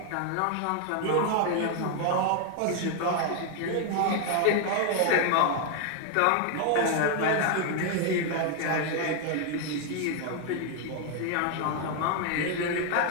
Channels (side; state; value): both; different; correlation 0.00